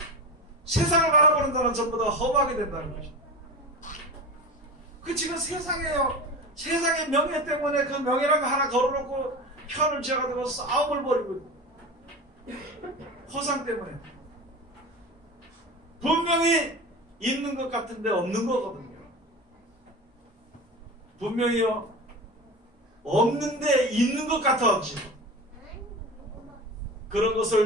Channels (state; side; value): normal; both; correlation 0.29